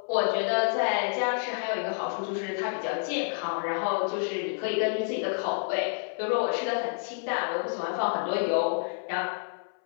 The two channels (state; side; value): silent; right; 59 dB below the other